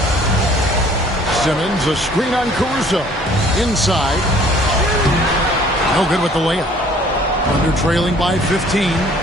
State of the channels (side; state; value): both; normal; correlation 0.55